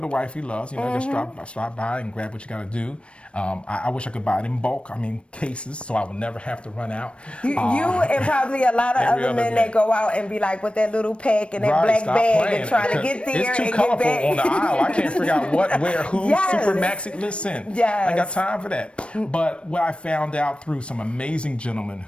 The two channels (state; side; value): late; right; 0.059 ms